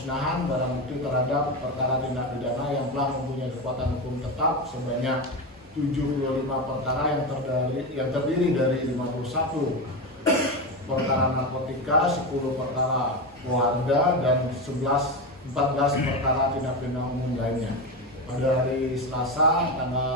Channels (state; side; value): normal; both; correlation 0.17